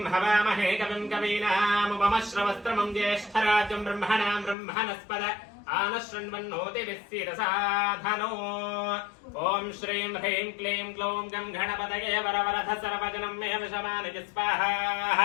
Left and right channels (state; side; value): drops out; right; at 4.5 s